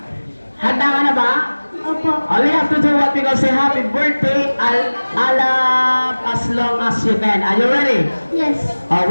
Handa ka na ba? Opo. All you have to do what we call say happy birthday, alap as long as you can. Are you ready? Yes. 1,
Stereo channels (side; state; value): both; inverted; correlation -1.00